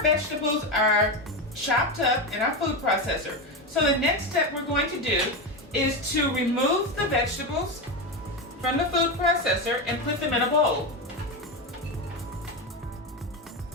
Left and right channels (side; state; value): both; normal; correlation 0.14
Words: vegetables are chopped up in our food processor. So the next step we're going to do is to remove the vegetables from the food processor and put them in a bowl.